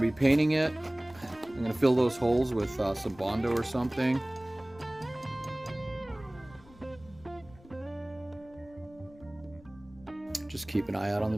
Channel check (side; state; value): left; noise; rumble, 23 dB below the sound